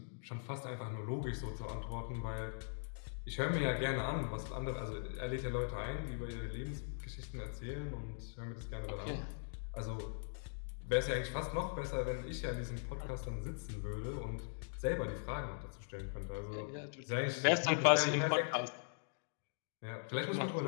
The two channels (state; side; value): silent; right; digital silence